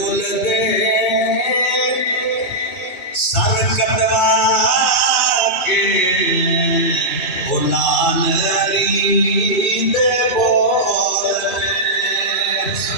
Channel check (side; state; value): right; late; 2.3 ms